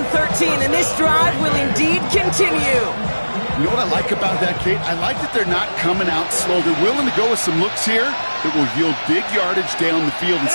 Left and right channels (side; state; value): both; inverted; correlation -1.00